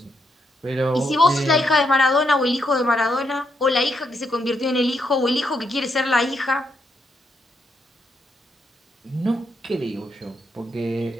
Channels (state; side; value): normal; both; correlation 0.78